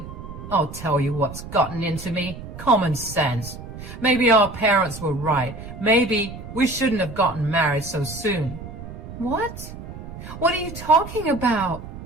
I'll tell you what's gotten into me. Common sense. Maybe our parents were right. Maybe we shouldn't have gotten married so soon. What? What are you talking about?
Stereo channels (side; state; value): right; noise; rumble, 12 dB below the sound